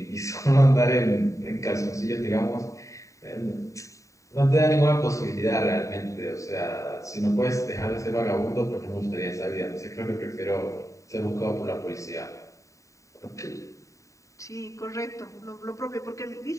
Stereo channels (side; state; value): right; late; 0.16 ms